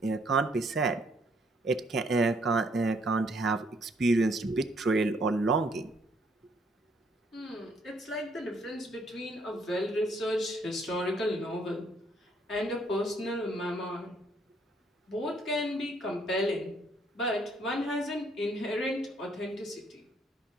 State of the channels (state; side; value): normal; both; correlation 0.68